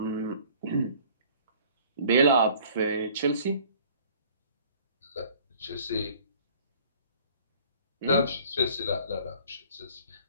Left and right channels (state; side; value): inverted; both; correlation -0.52